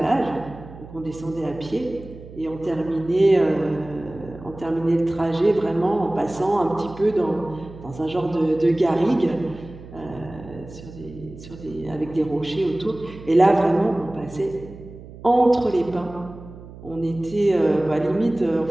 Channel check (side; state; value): right; noise; hum, 16 dB below the sound